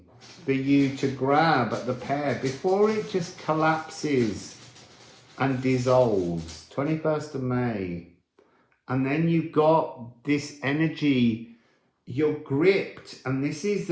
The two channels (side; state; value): both; identical; correlation 1.00